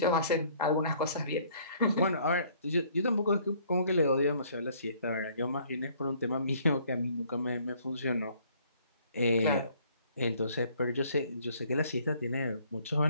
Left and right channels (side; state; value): both; inverted; correlation -0.60